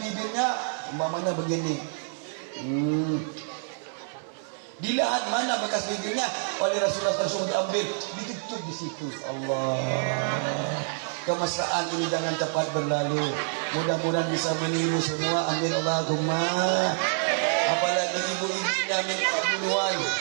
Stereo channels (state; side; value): silent; left; 59 dB below the other